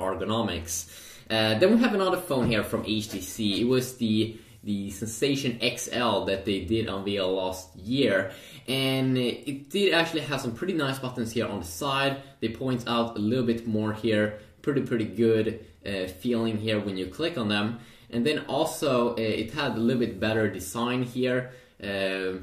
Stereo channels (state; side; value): identical; both; correlation 1.00